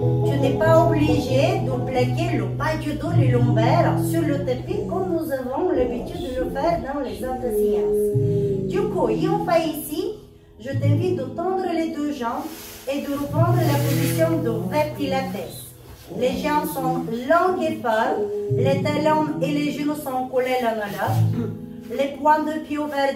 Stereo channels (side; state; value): both; identical; correlation 1.00